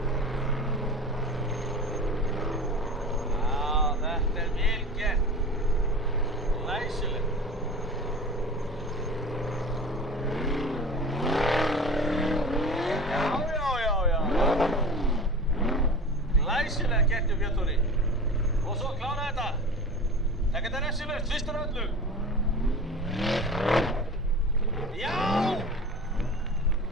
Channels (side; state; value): both; normal; correlation 0.35